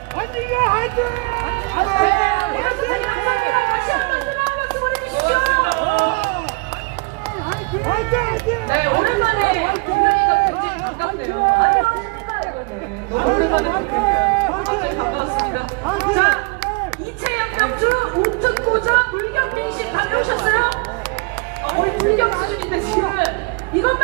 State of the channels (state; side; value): quieter; left; 29.9 dB